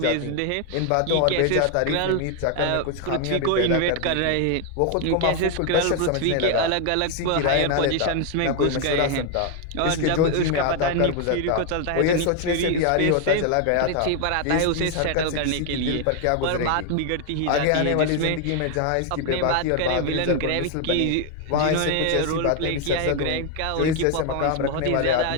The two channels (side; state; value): both; different; correlation 0.01